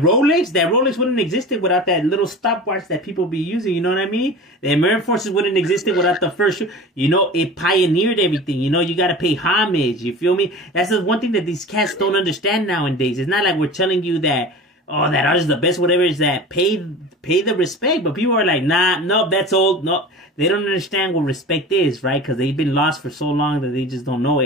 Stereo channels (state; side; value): normal; both; correlation 0.35